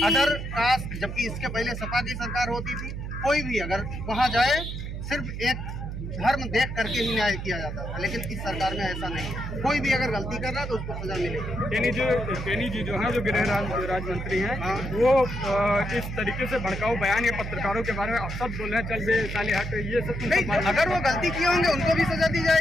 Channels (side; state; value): right; noise; hum, 6 dB below the sound